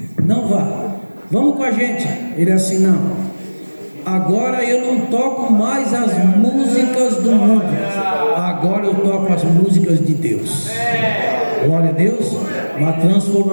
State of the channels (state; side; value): inverted; both; correlation -1.00